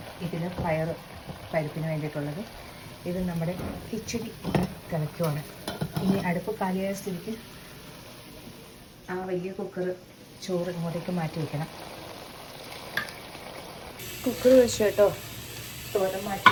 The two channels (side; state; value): both; identical; correlation 1.00